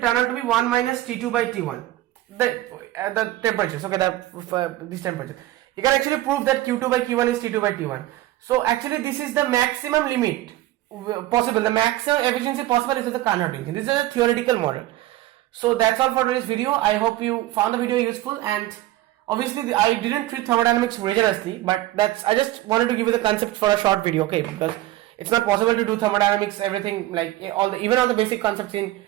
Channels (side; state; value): left; quieter; 15.8 dB